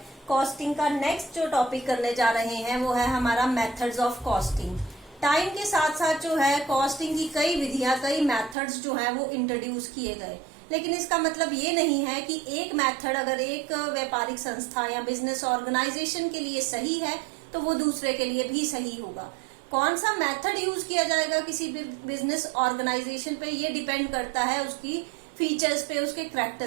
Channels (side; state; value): left; drops out; at 8.6 s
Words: कॉस्टिंग का नेक्स्ट जो टॉपिक करने जा रहे हैं वो है हमारा मेथड्स ऑफ कॉस्टिंग। टाइम के साथ साथ जो है कॉस्टिंग की कई विधियां, कई मेथड्स जो है वो इंट्रोड्यूस किए गए, लेकिन इसका मतलब ये नहीं है कि एक मेथड अगर एक व्यापारिक संस्था या बिजनेस ऑर्गेनाइजेशन के लिए सही है तो वो दूसरे के लिए भी सही होगा। कौन सा मेथड यूज किया जाएगा किसी भी बिजनेस ऑर्गेनाइजेशन पे, ये डिपेंड करता है उसकी फीचर्स पे, उसके